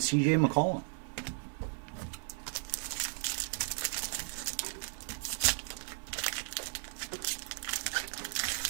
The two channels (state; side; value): silent; left; 54 dB below the other